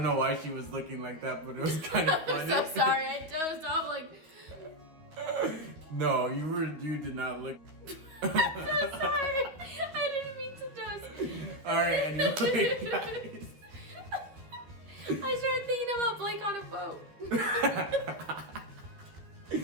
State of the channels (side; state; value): left; late; 12 ms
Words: know why she was looking like that, but it was kind of funny. I'm so sorry. I dozed off like. No, you did not look. I'm so sorry. I didn't mean to doze. All right, anyway, guys. I started thinking about Blake on a boat.